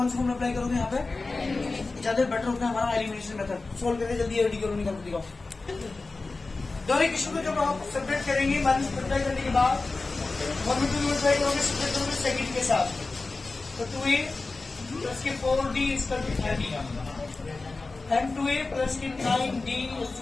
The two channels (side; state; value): right; quieter; 3.6 dB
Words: सा फॉर्मूला अप्लाई करोगे यहाँ पे? ज्यादा बेटर होता है हमारा एलिमिनेशन मेथड। सोल्व करके जल्दी एडी करो, निकाल दिखाओ। दोनों इक्वेशन को जब आप सेपरेट करेंगे माइनस मल्टीप्लाई करने के बाद 1 में 2 मल्टीप्लाई करोगे, सेपरेट करोगे सेकंड के साथ, तो 2A प्लस के 4D equal to 30 and 2A plus के 9D